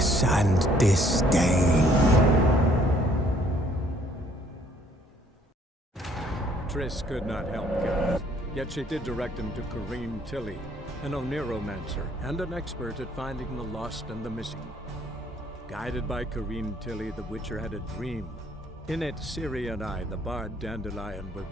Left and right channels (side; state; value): both; normal; correlation 0.63